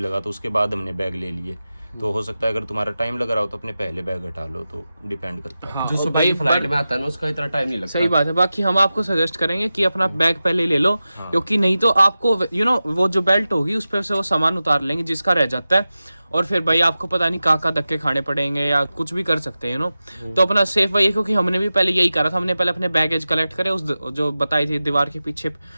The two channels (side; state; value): both; inverted; correlation -0.94